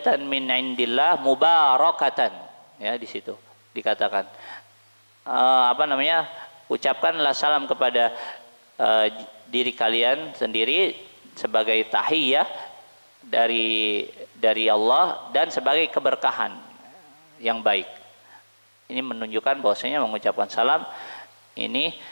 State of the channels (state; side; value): inverted; both; correlation -1.00